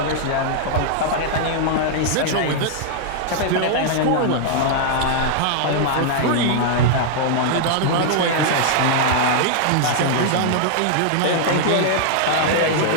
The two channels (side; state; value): both; different; correlation -0.01